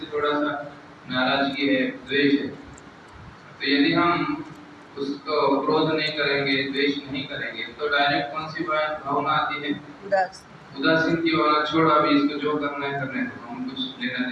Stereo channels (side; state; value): both; identical; correlation 1.00